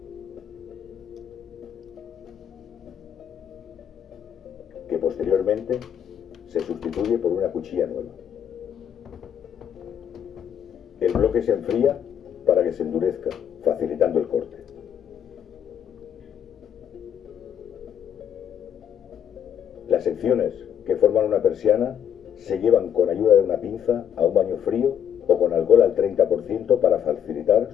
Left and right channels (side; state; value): right; quieter; 9.0 dB